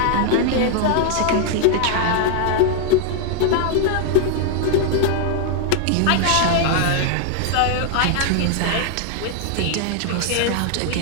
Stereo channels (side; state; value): both; different; correlation 0.00